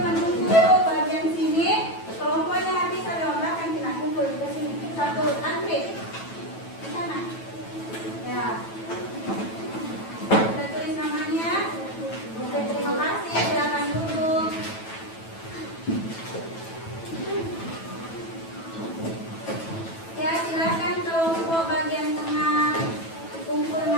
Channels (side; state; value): right; late; 9.1 ms